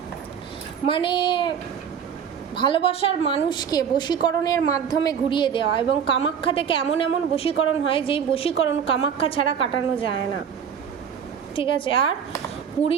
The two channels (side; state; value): left; quieter; 7.6 dB